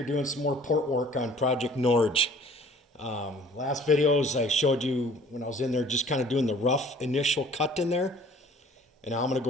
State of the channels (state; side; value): normal; both; correlation 0.51